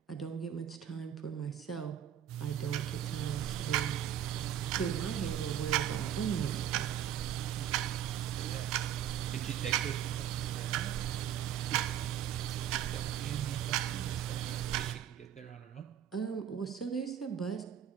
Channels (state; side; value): quieter; left; 10.0 dB